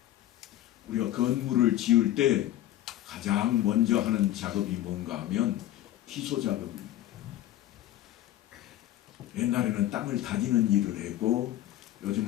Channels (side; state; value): right; quieter; 13.6 dB